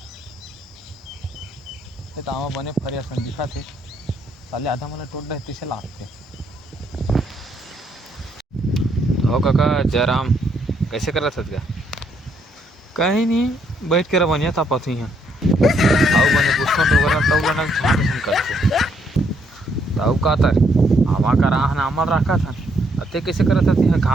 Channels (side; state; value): both; normal; correlation 0.72